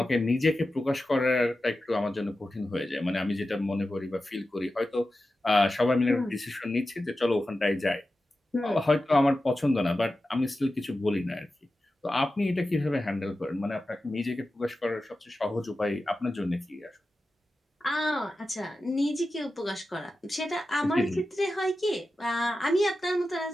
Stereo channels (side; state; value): both; normal; correlation 0.93